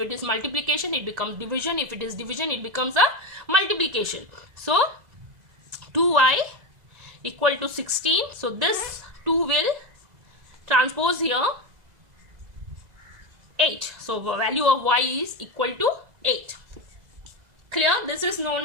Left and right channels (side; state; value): left; late; 2.0 ms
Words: is multiplication, it becomes division. If it is division, it becomes a multiplication. So 2y equal to 16. So this 2 will transpose here 8. So value of y is equal to 8. Clear? This is known